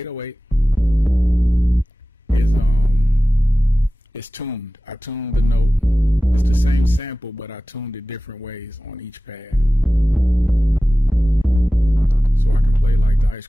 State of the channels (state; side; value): normal; both; correlation 0.96